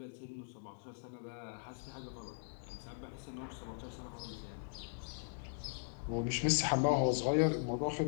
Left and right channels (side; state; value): right; silent; digital silence